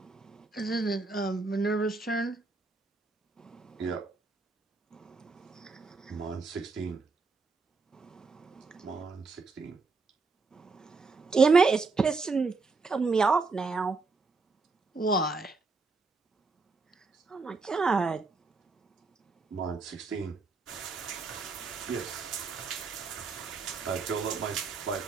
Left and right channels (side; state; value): left; quieter; 4.1 dB